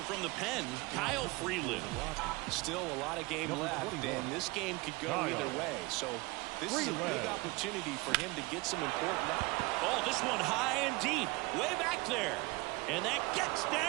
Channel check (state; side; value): quieter; left; 23.9 dB